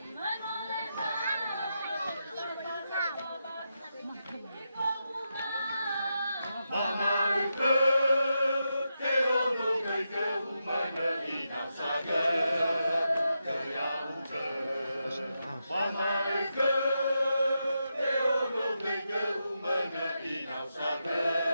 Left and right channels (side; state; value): both; inverted; correlation -0.86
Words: Mama ike Nehono mege umana inasane Kayauke Mama ike Nehono mege umana inasane